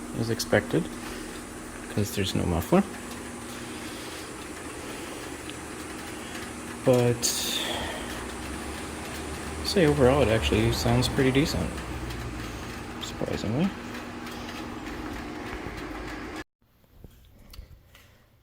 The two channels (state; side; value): identical; both; correlation 1.00